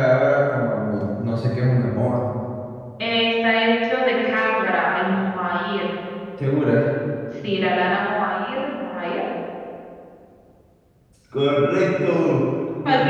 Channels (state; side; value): identical; both; correlation 1.00